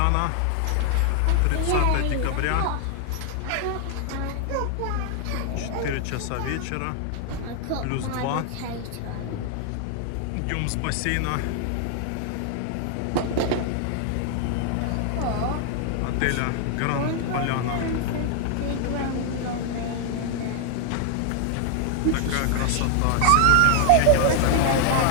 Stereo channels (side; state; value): both; different; correlation 0.00